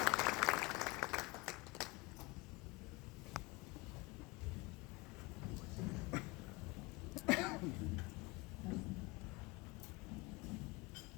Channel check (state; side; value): quieter; right; 23.5 dB